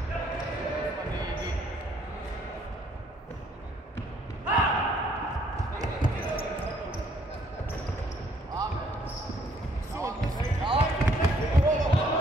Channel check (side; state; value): both; normal; correlation 0.65